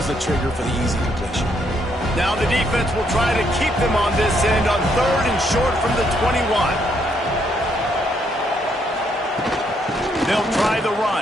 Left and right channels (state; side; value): normal; both; correlation 0.73